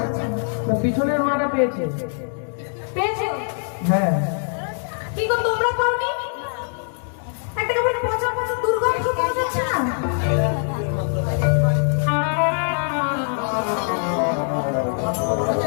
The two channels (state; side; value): silent; right; 63 dB below the other